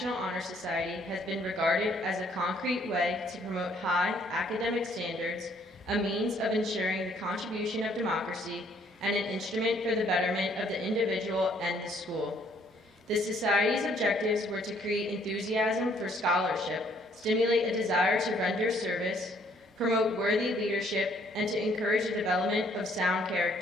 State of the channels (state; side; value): normal; both; correlation 0.64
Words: Honor Society has been regarded as a concrete way to promote high academic standards, a means of ensuring the contribution of democracy, and an instrument for the betterment of the individual and the school. The Society's objectives were to create enthusiasm for scholarship, stimulate a desire to render service, promote worthy leadership, and to encourage the development of sound